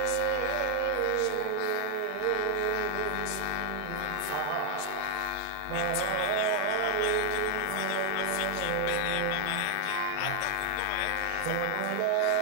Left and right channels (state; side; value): different; both; correlation 0.00